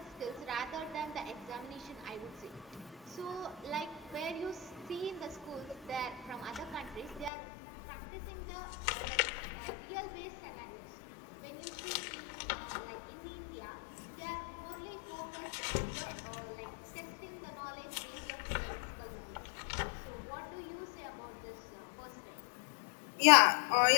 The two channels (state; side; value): drops out; right; at 7.3 s